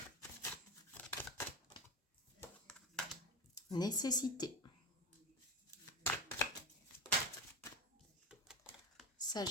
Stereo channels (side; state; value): both; normal; correlation 0.19